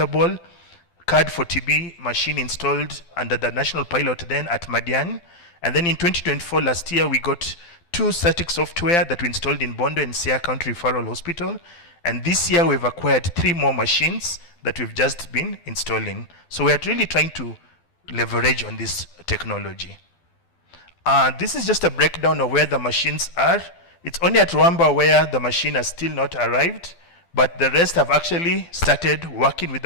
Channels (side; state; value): right; late; 12 ms